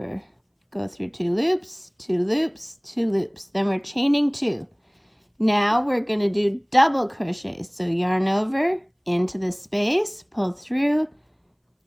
go through 2 loops, 2 loops, 2 loops. Then we're chaining 2. Now we're going to do double crochets. So yarn over into the space, pull through,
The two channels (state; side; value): identical; both; correlation 1.00